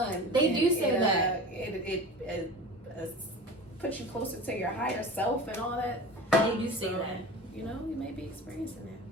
They do say that. It puts you closer to your higher self and all that. They do say that. You know, you may be experiencing that.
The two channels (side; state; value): both; normal; correlation 0.34